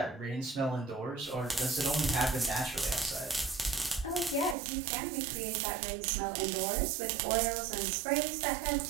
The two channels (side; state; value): left; drops out; at 4.5 s